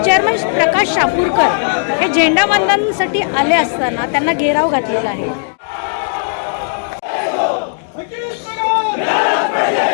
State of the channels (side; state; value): right; silent; digital silence